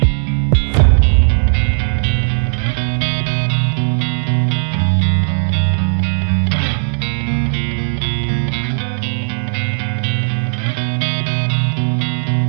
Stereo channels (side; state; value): left; silent; digital silence